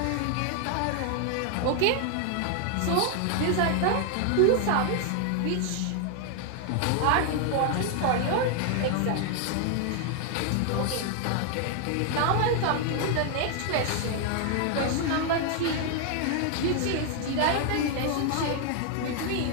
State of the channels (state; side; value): different; both; correlation 0.00